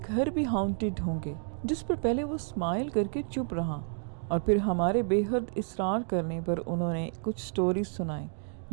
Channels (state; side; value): silent; left; 58 dB below the other